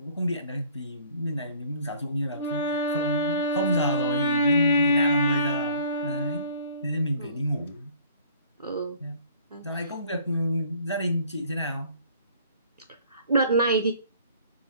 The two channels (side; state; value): both; inverted; correlation -0.54